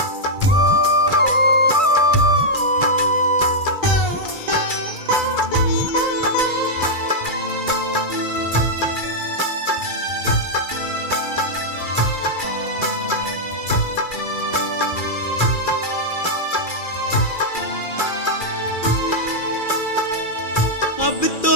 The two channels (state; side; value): late; right; 2.4 ms